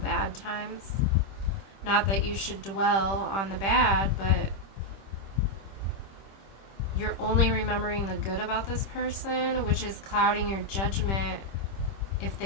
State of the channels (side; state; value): right; late; 26 ms